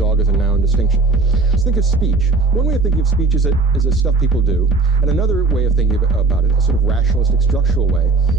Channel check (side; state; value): left; quieter; 3.8 dB